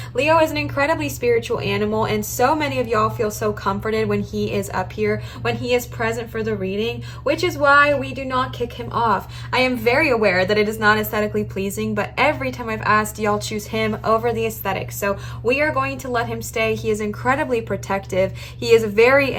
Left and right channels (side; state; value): both; identical; correlation 1.00